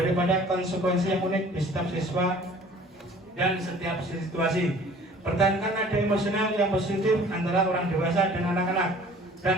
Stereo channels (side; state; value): both; normal; correlation 0.50